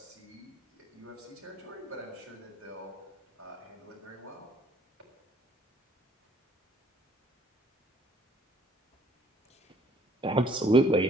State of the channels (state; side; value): normal; both; correlation 0.60